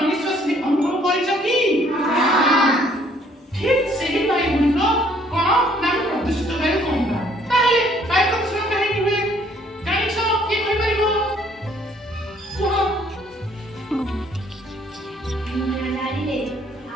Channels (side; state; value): both; normal; correlation 0.62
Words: ଅନୁଭବ କରିଛ କି? ଠିକ୍ ସେହି ବାୟୁ ଗୁଡ଼ିକ କଣ ନା ପ୍ରଦୂଷିତ ବାୟୁ କହିବା। ତାହେଲେ ବାୟୁ ପ୍ରଦୂଷଣ କାହିଁକି ହୁଏ ଜାଣିଛ? କିଏ କହିପାରିବ? କୁହ। ଗାଡ଼ିରେ